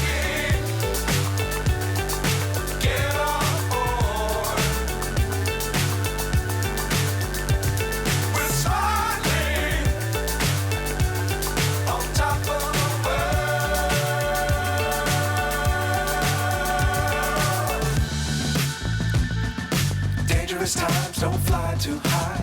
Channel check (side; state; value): both; identical; correlation 1.00